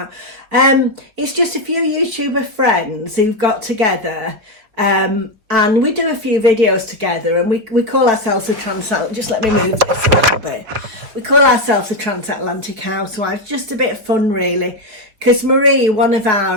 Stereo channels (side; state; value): left; late; 4.9 ms